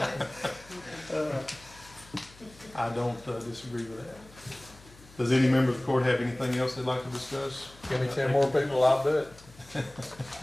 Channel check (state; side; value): noise; left; hum, 23 dB below the sound